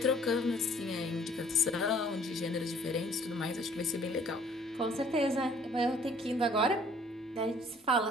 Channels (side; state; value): both; normal; correlation 0.57